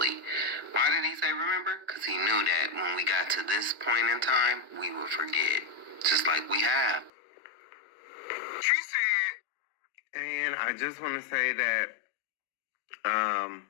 Why did he say remember? Because he knew that when we got to this point in time, we would forget. Just like we have. She said, and I just want to say that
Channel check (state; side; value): drops out; right; at 7.1 s